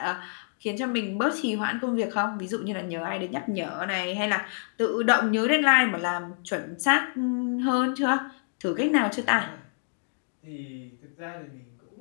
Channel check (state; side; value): silent; right; digital silence